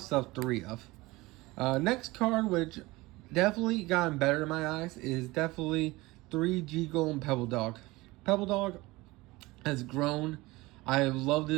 3 of. Next card, which definitely gotten better in my eyes, is definitely 3 Golem Pebble Dog. Pebble Dog has grown. I love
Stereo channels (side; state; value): left; quieter; 21.0 dB